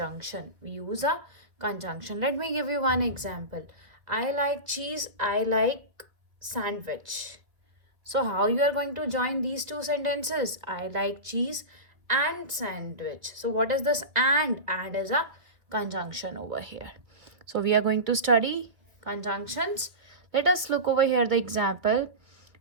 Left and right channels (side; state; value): left; late; 1.8 ms